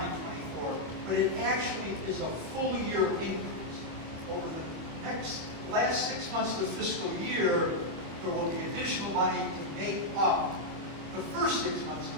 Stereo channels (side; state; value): left; late; 25 ms